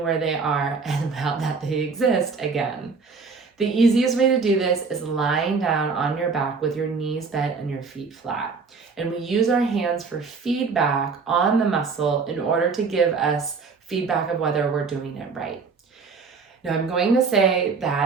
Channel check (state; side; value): quieter; left; 4.8 dB